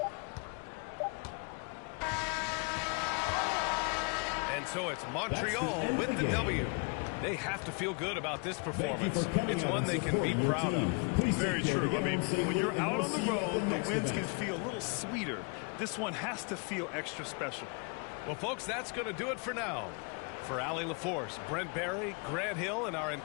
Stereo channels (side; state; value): right; quieter; 34.8 dB